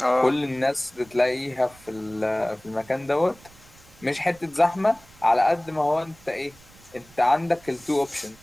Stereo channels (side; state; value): right; noise; rumble, 25 dB below the sound